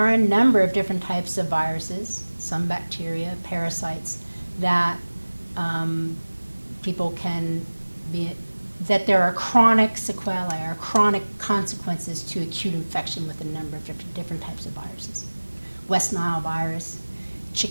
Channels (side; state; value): both; inverted; correlation -1.00